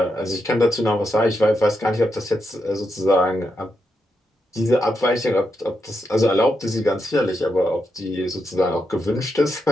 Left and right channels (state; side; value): normal; both; correlation 0.84